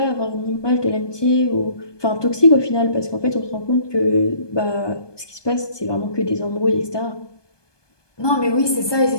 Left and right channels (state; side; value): late; right; 1.2 ms